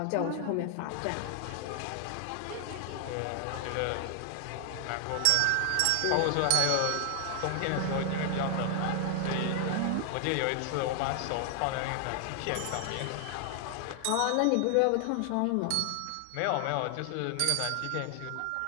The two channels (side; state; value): both; different; correlation 0.00